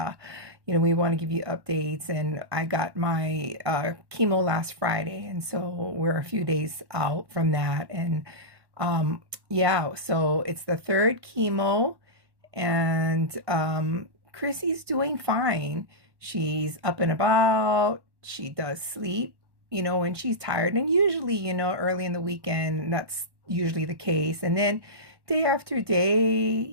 we want to give you updates. And I got my chemo last Friday, and so we're a few days out from that. And yeah, so it's the third chemo, and Chrissy's doing fine. She's up and about. She does sleep, when she's tired. And usually, early in the weekend, that's usually the case. And then day after day,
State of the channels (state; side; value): late; left; 1.1 ms